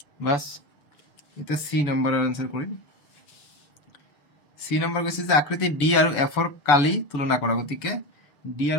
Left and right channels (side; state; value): right; late; 6.9 ms